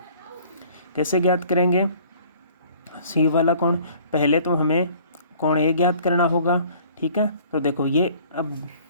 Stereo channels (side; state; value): both; inverted; correlation -0.53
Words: कैसे ज्ञात करेंगे C वाला कोण, पहले तो हमें कोण A ज्ञात करना होगा। ठीक है, तो देखो ये, अब